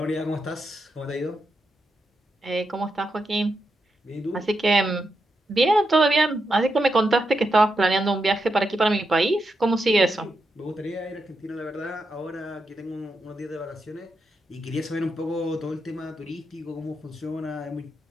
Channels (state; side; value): normal; both; correlation 0.85